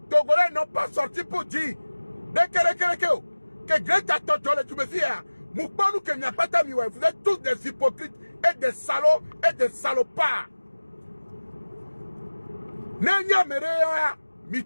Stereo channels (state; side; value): inverted; both; correlation -1.00